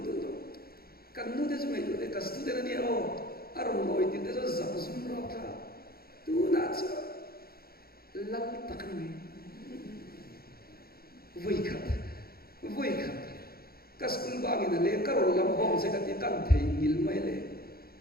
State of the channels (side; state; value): right; late; 0.44 ms